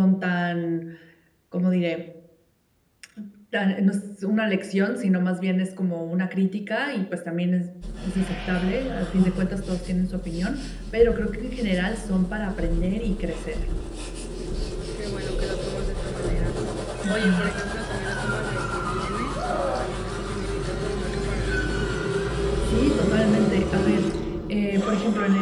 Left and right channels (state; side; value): identical; both; correlation 1.00